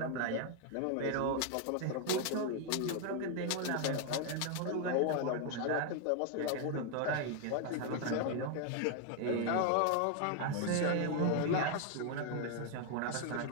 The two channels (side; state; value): both; different; correlation 0.00